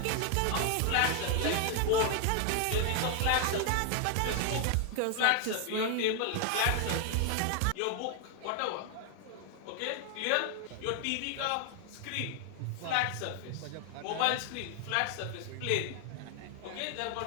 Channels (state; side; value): different; both; correlation 0.00